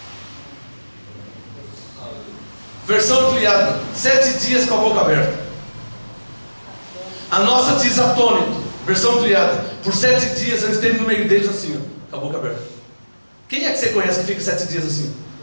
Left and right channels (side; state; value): both; inverted; correlation -1.00